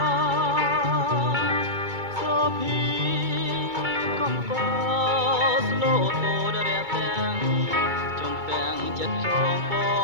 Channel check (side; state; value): left; late; 2.2 ms